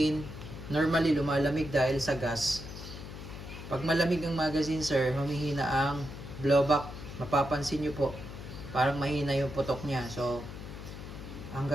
normally lumalamig dahil sa gas. Pag malamig ang magazine, sir, humihina ang blowback. Mapapansin nyo po, parang mahina yung putok niya. So, ang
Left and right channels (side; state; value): left; noise; hum, 11 dB below the sound